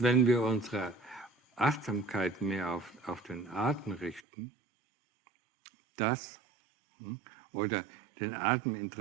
wenn wir unsere Achtsamkeit mehr auf den Atem richten, oder den Atem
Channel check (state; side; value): drops out; left; at 4.2 s